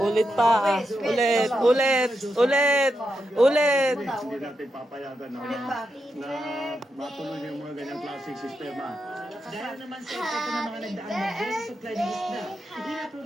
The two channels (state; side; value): normal; both; correlation 0.85